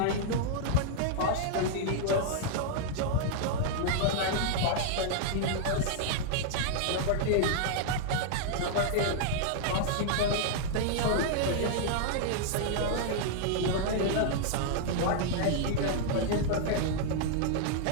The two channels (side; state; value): both; different; correlation -0.01